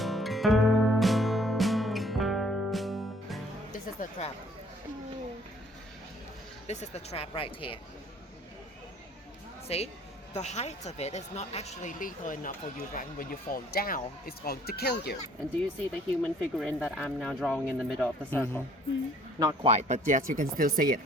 This is the trap. This is the trap right here. See? The height of it is not actually lethal enough for you, right? When you fall down, it's going to kill you. And do you see the human figurine that I'm now drawing in the middle of the circle? Not quite, but yes, you can still see it,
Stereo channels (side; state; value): both; normal; correlation 0.58